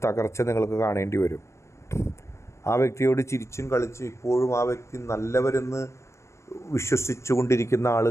തകർച്ച നിങ്ങൾക്ക് കാണേണ്ടി വരും. ആ വ്യക്തിയോട് ചിരിച്ചും കളിച്ചും ഇപ്പോഴും ആ വ്യക്തി നല്ലവരെന്ന് വിശ്വസിച്ചു കൊണ്ടിരിക്കുന്ന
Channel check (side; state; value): right; late; 0.14 ms